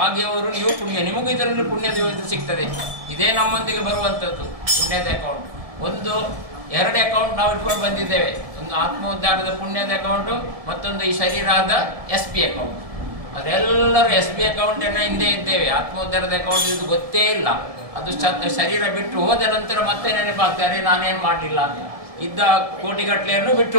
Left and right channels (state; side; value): late; left; 1.7 ms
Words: ನೀವು ಪುಣ್ಯ, ನಿಮಗೂ ಇದರಲ್ಲಿ ಪುಣ್ಯದ ಸಿಗ್ತದೆ. ಇದೇ ನಮ್ಮೊಂದಿಗೆ ಬರುವಂಥದ್ದು ಪುಣ್ಯದ ಅಕೌಂಟ್. 2 ಅಕೌಂಟ್ ನಾವು ಇಟ್ಕೊಂಡು ಬಂದಿದ್ದೇವೆ. ಒಂದು ಆತ್ಮೋದ್ಧಾರದ ಪುಣ್ಯದ ಅಕೌಂಟು, ಮತ್ತೊಂದು ಈ ಶರೀರದ SB ಅಕೌಂಟ್. ಅದೆಲ್ಲರೂ SB ಅಕೌಂಟನ್ನು ಹಿಂದೆ ಇದ್ದೇವೆ. ಆತ್ಮೋದ್ಧಾರದ ಅಕೌಂಟ್ ಇದು ಗೊತ್ತೇ ಇಲ್ಲ. ಅದು ಶರೀರ ಬಿಟ್ಟು ಹೋದ ನಂತರ ಮತ್ತೆ ನೆನಪಾಗ್ತಾರೆ, ನಾನೇನು ಮಾಡಲಿಲ್ಲ ಅಂತ. ಇದ್ದ ಕೋಟಿಗಟ್ಟಲೆಯನ್ನು ಬಿಟ್ಟು